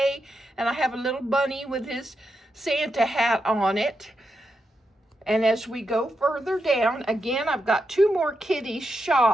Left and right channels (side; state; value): both; normal; correlation 0.85